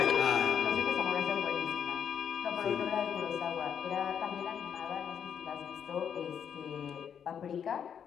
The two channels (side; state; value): right; quieter; 8.0 dB